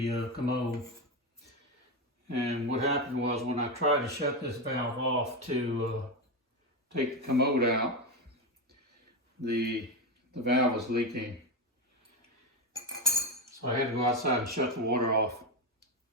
commode. And what happened was when I tried to shut this valve off to take the commode out, the valve was leaking. So I had to go outside and shut the water off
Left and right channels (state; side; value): normal; both; correlation 0.12